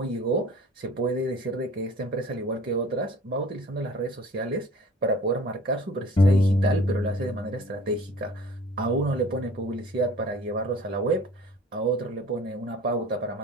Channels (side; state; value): both; normal; correlation 0.47